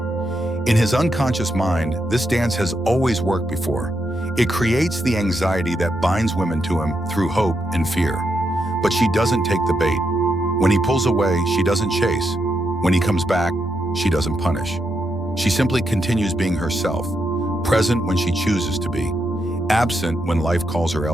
In his unconscious mind, this dance has always worked before. It creates the anxiety that binds women to him through hope and fear. But she doesn't take the bait. When he pulls away, she doesn't chase. When he comes back, she doesn't punish. She simply continues being herself, present when she chooses to be, absent when life calls her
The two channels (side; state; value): both; normal; correlation 0.82